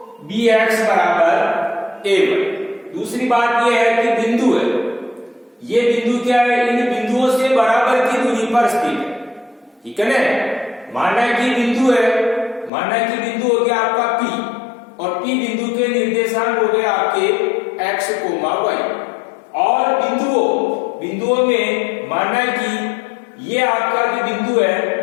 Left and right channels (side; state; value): right; drops out; at 12.7 s